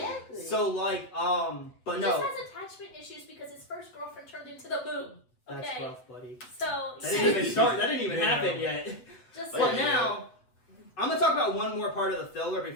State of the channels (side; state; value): right; late; 8.0 ms